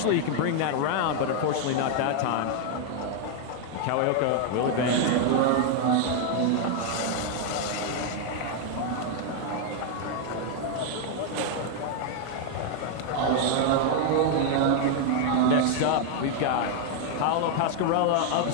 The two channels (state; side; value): different; both; correlation 0.00